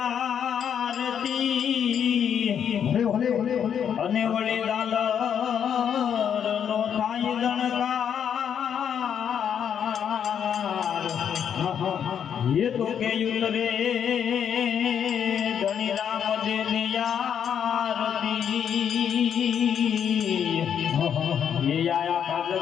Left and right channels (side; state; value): right; quieter; 8.4 dB